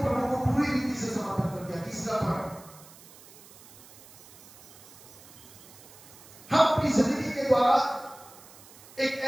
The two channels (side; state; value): right; noise; hiss, 21 dB below the sound